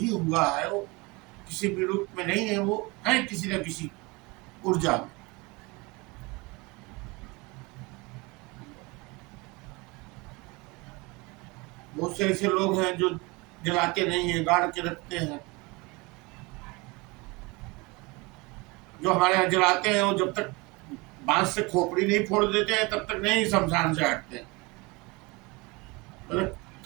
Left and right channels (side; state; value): left; quieter; 25.6 dB